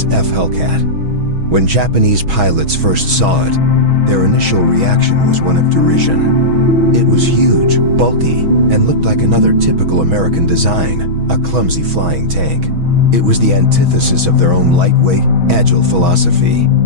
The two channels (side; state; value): left; late; 6.2 ms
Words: Hellcat. When Japanese pilots first saw it, their initial reaction was one of derision. It was huge, bulky, and looked like another typical American design, a clumsy flying tank. It was the antithesis of their own lightweight, agile philosophy.